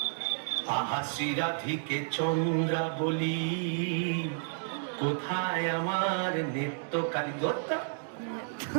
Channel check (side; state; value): left; silent; digital silence